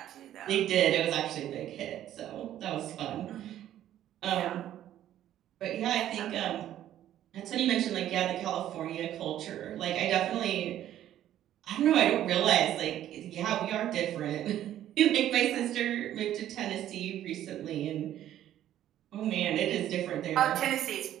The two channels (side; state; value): left; quieter; 12.0 dB